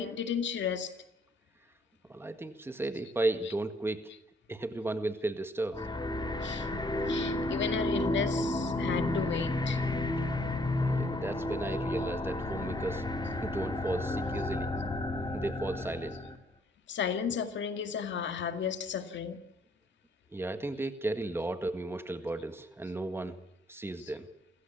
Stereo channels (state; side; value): normal; both; correlation 0.66